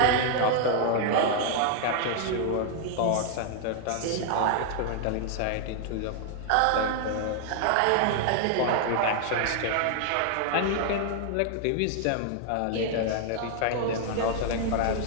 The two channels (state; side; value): different; both; correlation 0.00